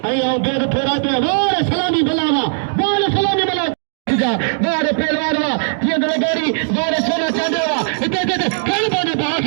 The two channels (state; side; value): silent; left; digital silence